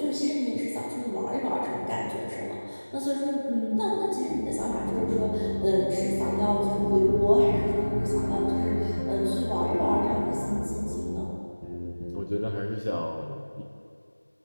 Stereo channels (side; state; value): both; inverted; correlation -1.00